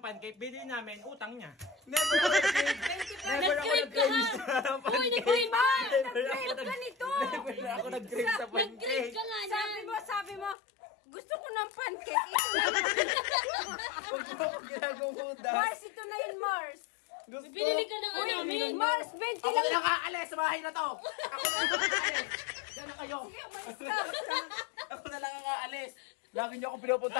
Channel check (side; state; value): right; drops out; at 10.6 s